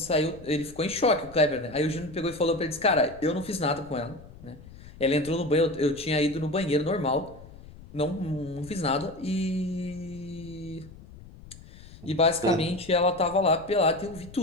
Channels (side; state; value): left; noise; rumble, 19 dB below the sound